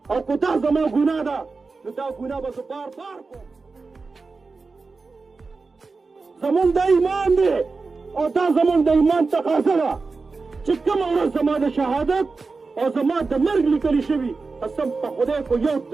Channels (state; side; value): quieter; left; 4.2 dB